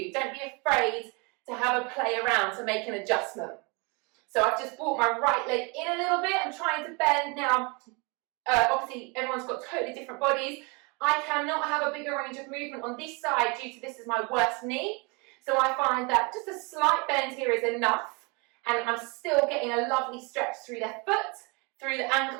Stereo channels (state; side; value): quieter; left; 30.3 dB